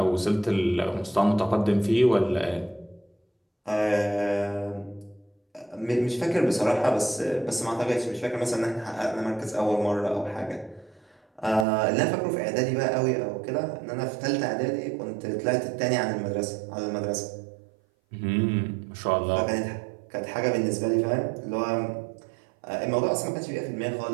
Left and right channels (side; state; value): left; drops out; at 11.7 s